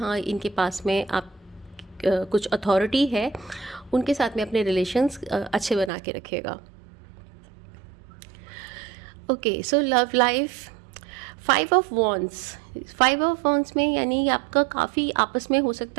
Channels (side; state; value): left; drops out; at 5.9 s